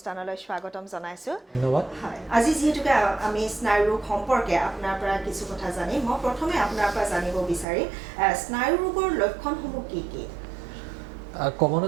স্বাগতম জনাইছো ধন্যবাদ আজি যেহেতুকে আমি স্নায়ুৰোগ সম্পৰ্কে আপোনাৰ পৰা কিছু কথা জানিম মই প্ৰথমে আপোনাৰ পৰা জানিব বিচাৰিম স্নায়ুৰোগৰ লক্ষণসমূহ কি কি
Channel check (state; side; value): drops out; left; at 7.7 s